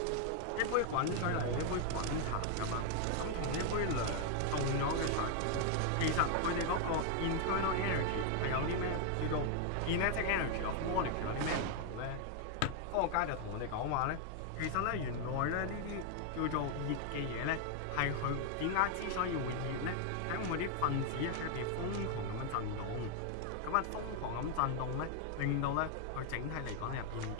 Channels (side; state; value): both; different; correlation 0.00